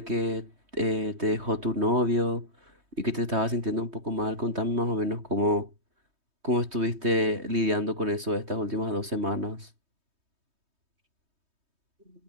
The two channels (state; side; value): late; left; 3.2 ms